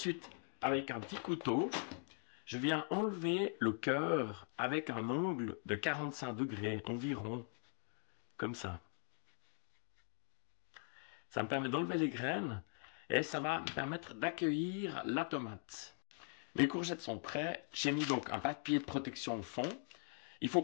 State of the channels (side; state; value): right; silent; 50 dB below the other